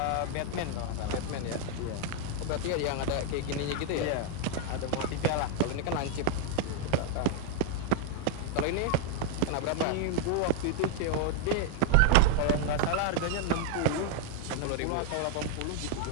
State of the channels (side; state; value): both; different; correlation 0.00